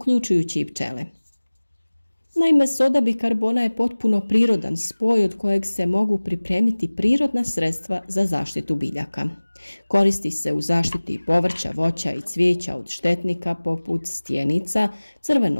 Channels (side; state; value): both; inverted; correlation -1.00